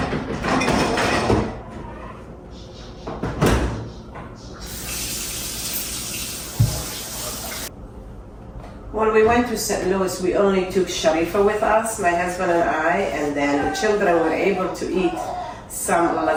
When we went to St. Louis, we only took Sharifa with us, my husband and I, and then the children were able to eat some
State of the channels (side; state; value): both; identical; correlation 1.00